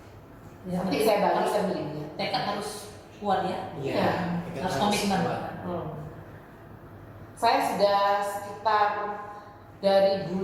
Ya, Nanti saya bagikan linknya. tekad harus kuat ya. Iya. Harus komitmen. Saya sudah sekitar dari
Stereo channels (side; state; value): both; identical; correlation 1.00